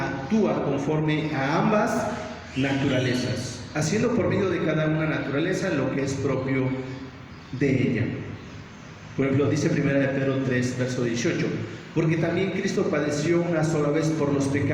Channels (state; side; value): identical; both; correlation 1.00